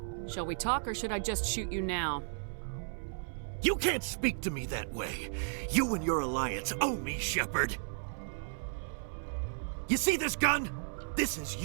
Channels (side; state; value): left; silent; 55 dB below the other